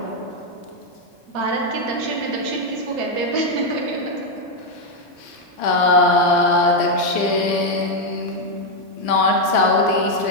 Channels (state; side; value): late; right; 3.9 ms